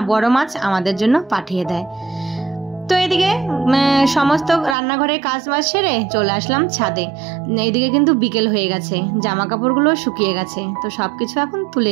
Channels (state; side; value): drops out; left; at 4.8 s